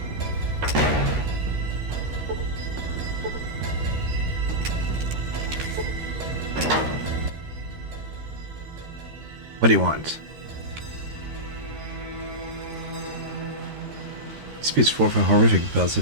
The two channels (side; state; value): left; late; 13 ms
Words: What do you want? Speaks forth a horrific buzz.